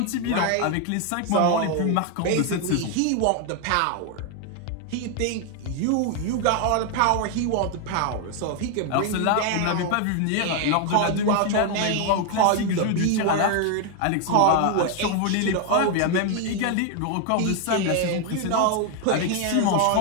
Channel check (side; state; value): both; different; correlation 0.01